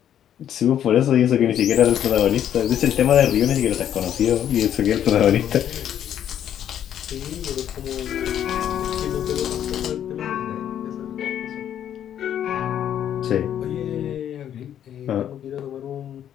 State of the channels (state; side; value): quieter; right; 10.2 dB